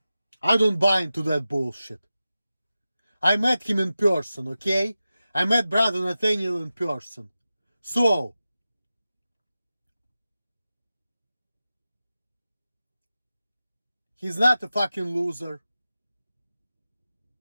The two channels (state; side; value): inverted; both; correlation -0.94